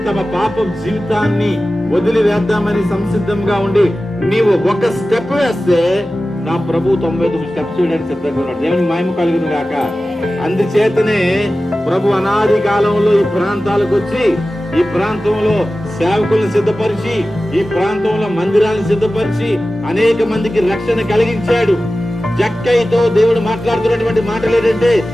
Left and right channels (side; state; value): both; normal; correlation 0.95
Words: తమ పాప జీవితాన్ని వదిలివేద్దామని సంసిద్ధంగా ఉండి నీవు ఒక స్టెప్ వేస్తే నా ప్రభు 99 స్టెప్స్ వేయడానికి సిద్ధంగా ఉన్నాడు. దేవునికి మహిమ కలుగును గాక. అందుచేతనే ప్రభు అనాది కాలంలో ఈ ప్రాంతాలకు వచ్చి, ఈ ప్రాంతంలో సేవకులను సిద్ధపరిచి, ఈ ప్రాంతంలో మందిరాలను సిద్ధపరిచి అనేక మందికి రక్షణ కలిగించాడు. జక్కయ్యతో దేవుడు మాట్లాడుతున్నటువంటి మాటలు ఏంటంటే,